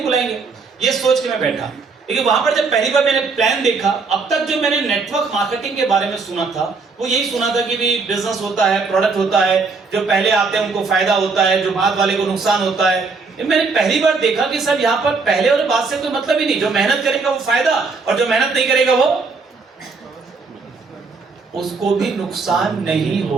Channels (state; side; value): quieter; left; 4.4 dB